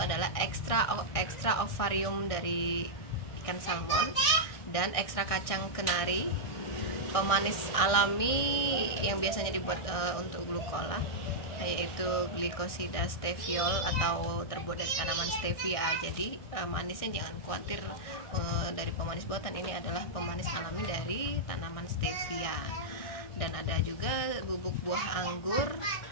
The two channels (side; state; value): right; late; 1.6 ms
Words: ekstra ovarium dari ikan salmon dan ekstra kacang kenari, pemanis alami yang biasanya dibuat untuk glukola, yaitu glikosida steviol atau terbuat dari tanaman stevia. Jadi manisnya jangan khawatir, dari pemanis buatan, ini adalah pemanis alami dari tanaman stevia. Dan ada juga bubuk buah anggur,